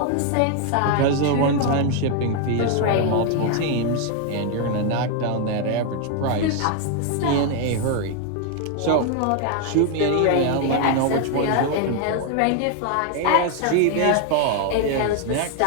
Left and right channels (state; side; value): different; both; correlation 0.00